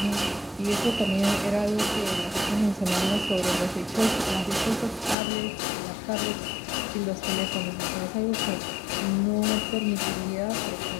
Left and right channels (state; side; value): drops out; right; at 5.2 s